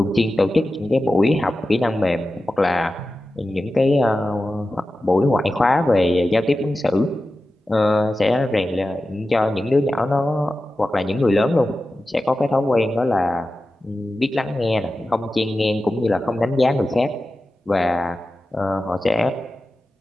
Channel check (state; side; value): normal; both; correlation 0.93